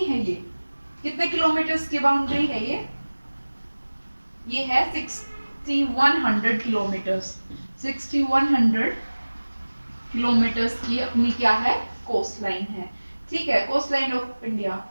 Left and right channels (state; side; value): inverted; both; correlation -1.00